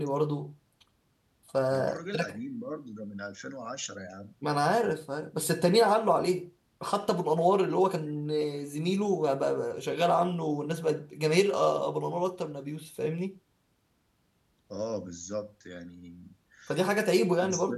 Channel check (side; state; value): both; identical; correlation 1.00